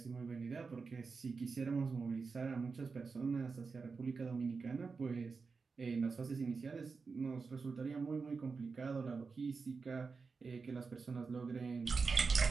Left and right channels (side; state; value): left; quieter; 4.7 dB